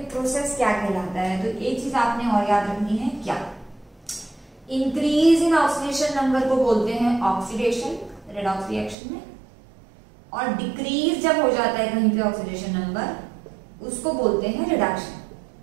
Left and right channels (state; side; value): drops out; left; at 9.0 s